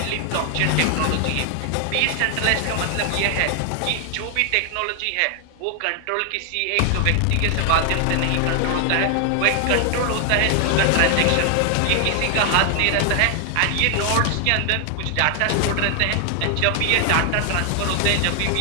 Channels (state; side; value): different; both; correlation 0.00